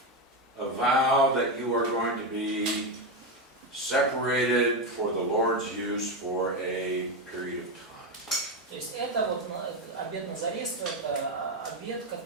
vow that you are going to be separated for the Lord's use for a period of time. То есть это вот обет Назарейства, это обет,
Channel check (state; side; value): normal; both; correlation 0.10